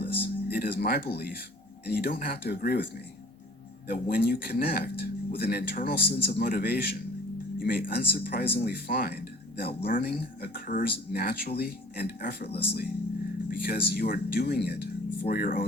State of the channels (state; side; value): normal; both; correlation 0.49